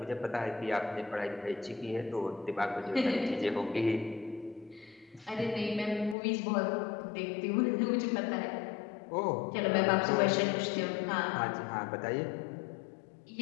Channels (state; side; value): drops out; right; at 6.2 s